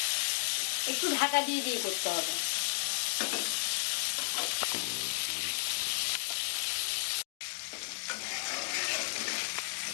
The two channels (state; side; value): silent; right; digital silence